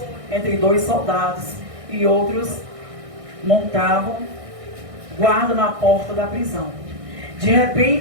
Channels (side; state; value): left; late; 1.6 ms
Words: entre 2 soldados, e outros montavam guarda na porta da prisão. De